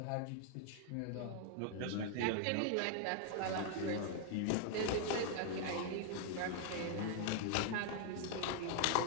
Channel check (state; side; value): different; both; correlation 0.00